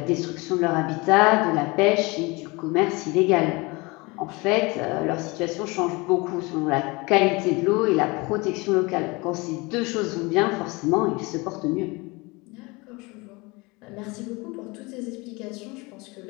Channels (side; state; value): right; quieter; 25.4 dB